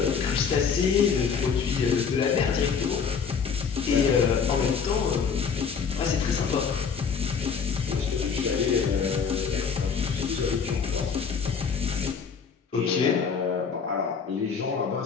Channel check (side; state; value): right; quieter; 6.2 dB